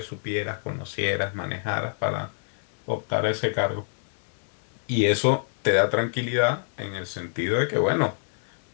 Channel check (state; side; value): silent; right; digital silence